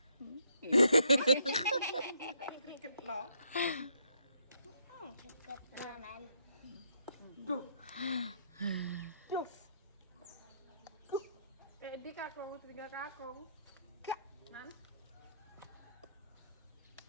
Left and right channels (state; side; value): inverted; both; correlation -0.71